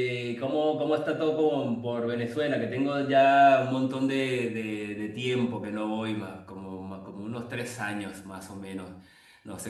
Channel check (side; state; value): both; identical; correlation 1.00